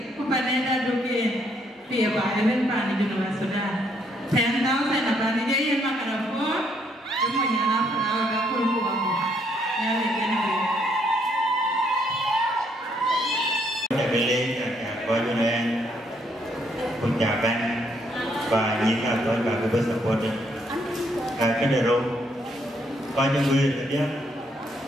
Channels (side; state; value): both; normal; correlation 0.71